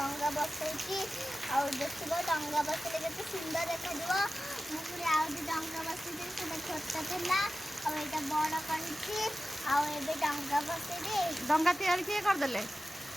बसैची आ देखो डंगा बसले केते सुंदर देखा दिबो मुझे आ डंगा बसैची से छोटा थिला आ एटा बड़ करछि आ एबे डंगा बसैले डंगा तैयार किए कर देले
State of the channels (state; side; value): normal; both; correlation 0.94